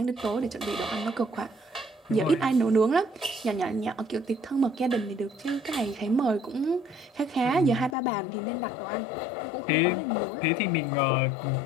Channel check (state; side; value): drops out; right; at 8.0 s